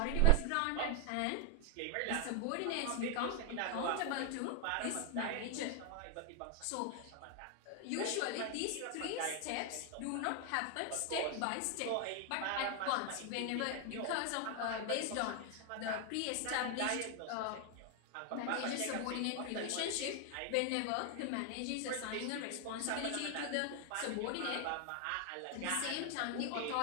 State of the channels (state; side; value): different; both; correlation 0.00